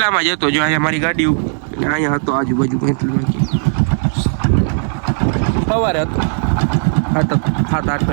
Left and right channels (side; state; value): left; silent; digital silence